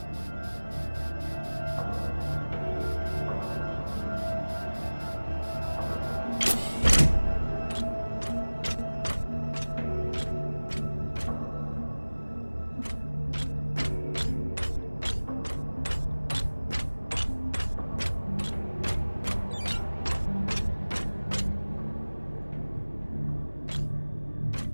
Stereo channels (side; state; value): both; inverted; correlation -1.00